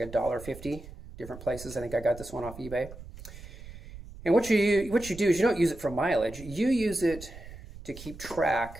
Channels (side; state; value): right; noise; rumble, 15 dB below the sound